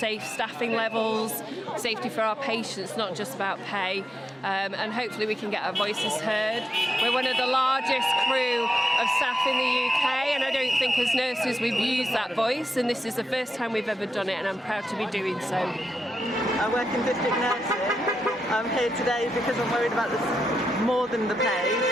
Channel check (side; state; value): both; normal; correlation 0.87